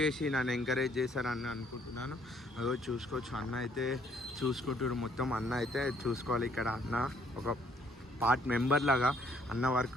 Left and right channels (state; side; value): normal; both; correlation 0.65